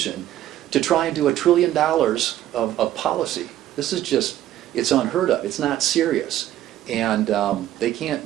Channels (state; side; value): quieter; left; 12.9 dB